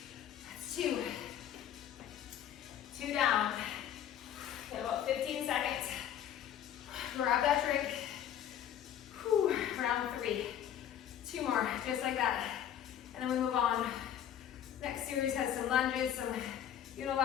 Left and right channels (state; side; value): quieter; right; 10.1 dB